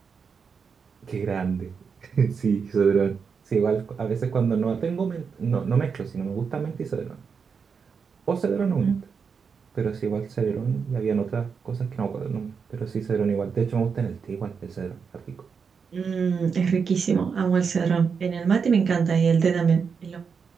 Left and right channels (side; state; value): left; quieter; 5.9 dB